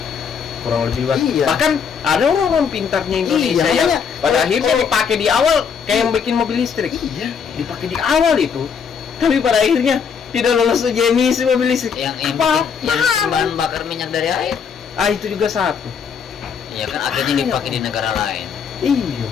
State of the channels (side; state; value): right; quieter; 6.6 dB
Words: Kurang lebih luas. Iya. Bahkan ada orang pintarnya Indonesia Iya, yang makanya, pada akhirnya kalau- dipakai di awal kayak yang bikin mobil listrik. Iya. Dipakai di awal itu. Tapi pada akhirnya tidak lolos uji emisi mobil listrik. Yang Apa? bahan bakar minyak dari air. Itu juga satu. Ya kan akhirnya dipakai di negara lain. Iya.